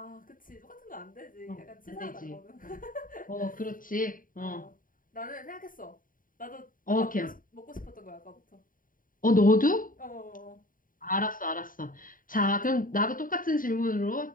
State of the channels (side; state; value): right; late; 0.40 ms